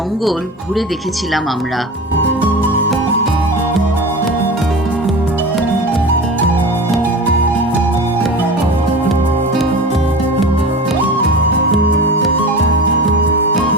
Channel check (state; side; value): normal; both; correlation 0.33